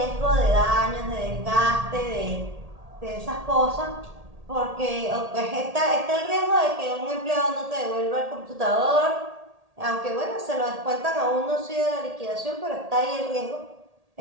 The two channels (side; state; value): left; late; 1.8 ms